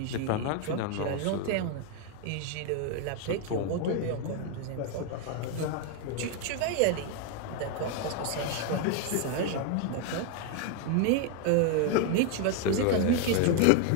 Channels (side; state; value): both; different; correlation 0.01